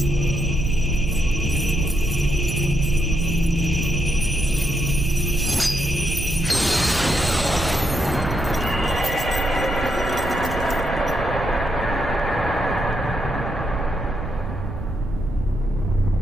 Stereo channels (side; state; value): right; noise; rumble, 8 dB below the sound